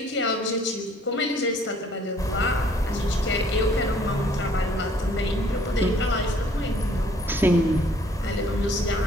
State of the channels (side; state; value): both; normal; correlation 0.60